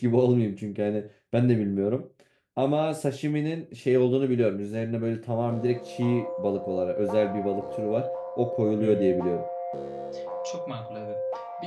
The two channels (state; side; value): identical; both; correlation 1.00